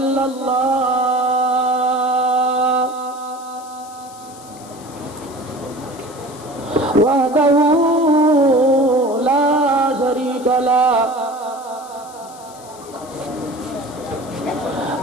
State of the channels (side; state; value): left; noise; hiss, 21 dB below the sound